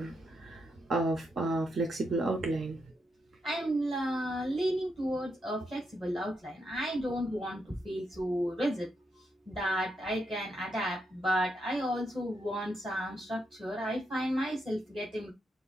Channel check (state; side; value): normal; both; correlation 0.82